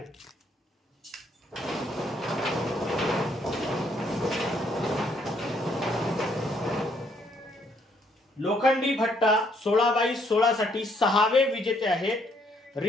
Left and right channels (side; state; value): both; normal; correlation 0.69